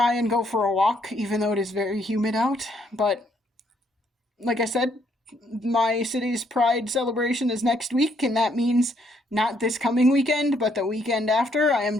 and go for a walk, even though it is very humid out, but like I said, my city's Pride celebration is next week, and that means not this coming weekend, but the weekend after. I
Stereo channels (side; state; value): both; normal; correlation 0.70